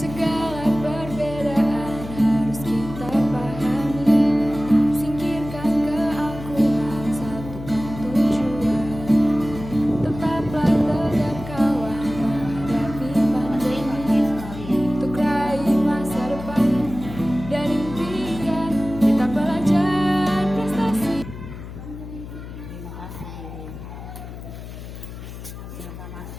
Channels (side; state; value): left; noise; hum, 12 dB below the sound